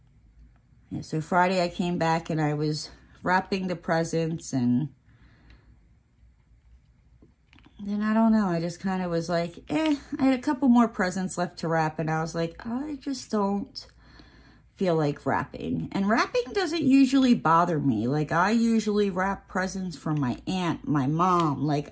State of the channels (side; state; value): both; identical; correlation 1.00